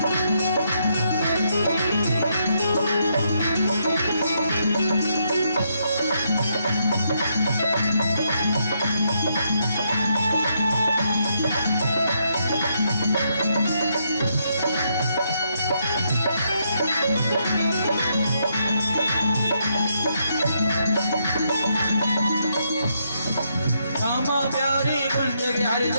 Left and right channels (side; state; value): both; inverted; correlation -0.77